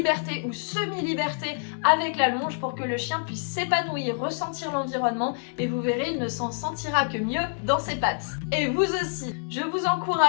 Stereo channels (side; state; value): right; silent; digital silence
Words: ou semi-liberté avec la longe pour que le chien puisse s'épanouir, ressentir l'environnement et vous verrez, il ne s'en sentira que mieux dans ses pattes. Et vous aussi, je vous